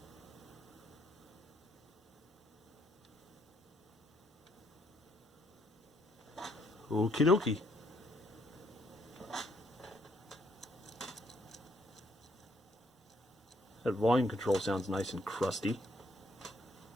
Okie dokie. That volume control sounds nice and crusty.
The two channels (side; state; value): both; normal; correlation 0.71